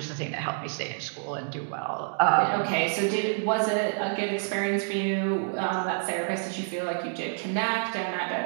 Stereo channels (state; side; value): silent; left; digital silence